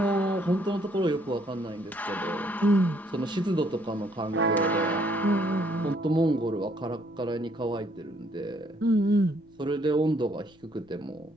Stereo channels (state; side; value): noise; left; rumble, 30 dB below the sound